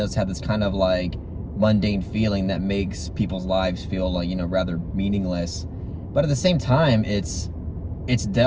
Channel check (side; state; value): both; identical; correlation 1.00